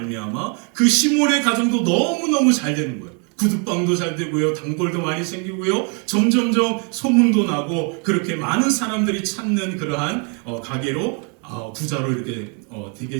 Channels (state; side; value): quieter; left; 37.4 dB